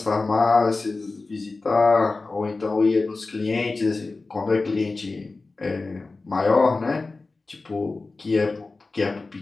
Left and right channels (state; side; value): quieter; right; 3.6 dB